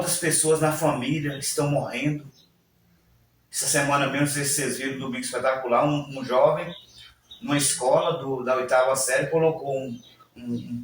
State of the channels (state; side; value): identical; both; correlation 1.00